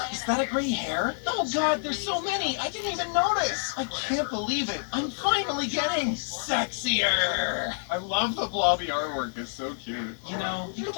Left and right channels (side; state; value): right; silent; 59 dB below the other